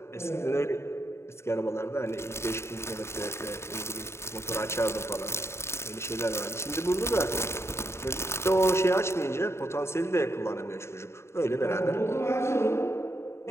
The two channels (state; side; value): late; right; 0.13 ms